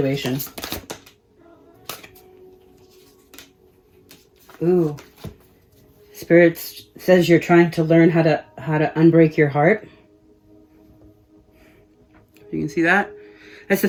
Ooh. Spirit says you're trying to learn how to unbreak your heart. You can see that? That's the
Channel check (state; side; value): identical; both; correlation 1.00